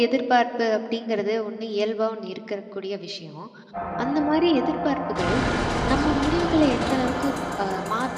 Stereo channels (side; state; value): both; identical; correlation 1.00